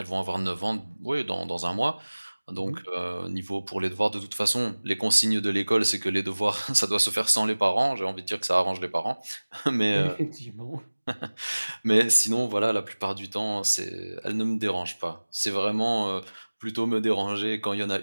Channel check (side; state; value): both; inverted; correlation -1.00